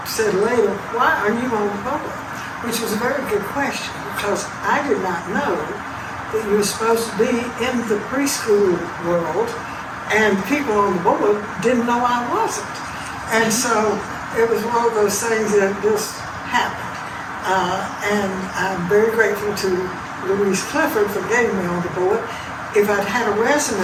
said later, why are you on the board? Which was a very good question, because I did not know that you were supposed to be in the preschool world, and people on the board didn't know I wasn't. And so it was one of those things that just happened. And I'm very grateful to Louise Clifford for getting me on the board. If I'd had a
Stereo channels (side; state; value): both; identical; correlation 1.00